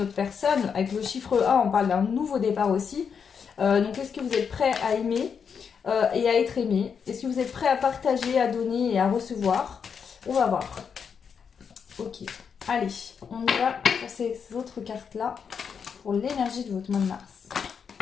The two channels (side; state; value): right; quieter; 6.6 dB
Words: autre personne. Avec le chiffre 1, on parle d'un nouveau départ aussi. Donc est-ce que vous êtes prêt à aimer et à être aimé? Est-ce que vous êtes prêt à partager, à donner et à recevoir? On va voir. Ok, allez, on y va pour ces autres cartes-là pour l'énergie de votre mois de mars.